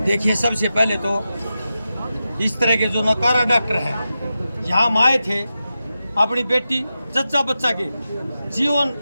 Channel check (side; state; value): both; inverted; correlation -0.91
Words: देखिए, सबसे पहले तो इस तरह के जो नकारा डॉक्टर हैं यहाँ आए थे, अपनी बेटी जच्चा बच्चा के जीवन